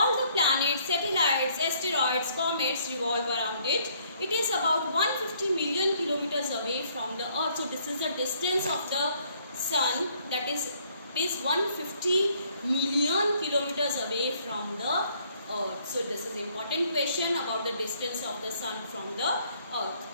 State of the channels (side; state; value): both; inverted; correlation -0.65